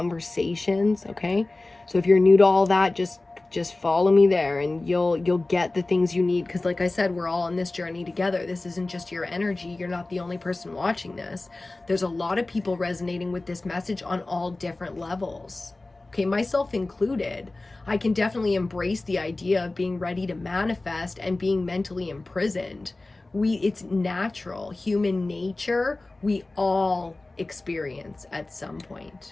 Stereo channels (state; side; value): quieter; right; 3.0 dB